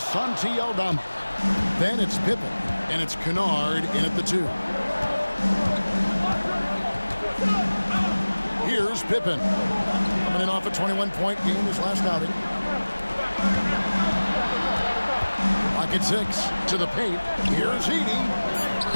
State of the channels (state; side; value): inverted; both; correlation -1.00